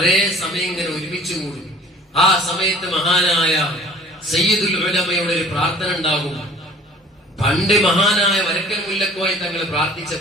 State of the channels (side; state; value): both; normal; correlation 0.48